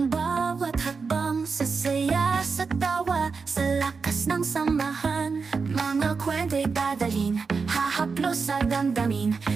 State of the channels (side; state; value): left; quieter; 5.0 dB